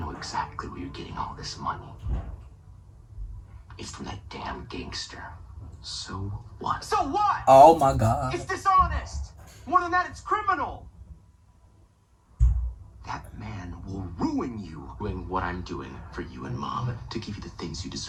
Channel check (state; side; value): identical; both; correlation 1.00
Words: exactly where you're getting all this money. It's from that damn gangster. So what? So what? Oh my god. It's dishonest. More than that, it's criminal. That man will ruin you doing what I'm doing for you and Mom to give you the things you